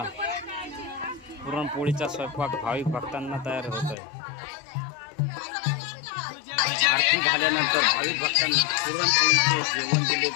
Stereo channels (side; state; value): right; drops out; at 4.0 s